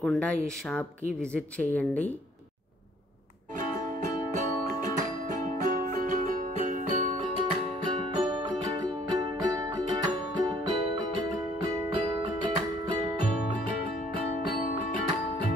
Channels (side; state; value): both; normal; correlation 0.60